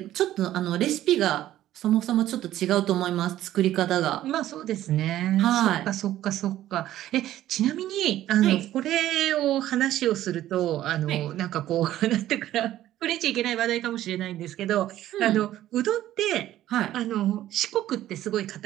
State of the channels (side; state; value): left; quieter; 13.4 dB